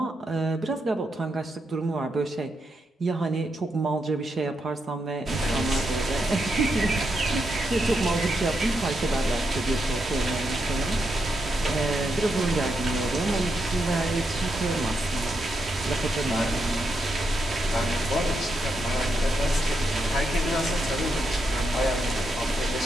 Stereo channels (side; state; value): both; normal; correlation 0.82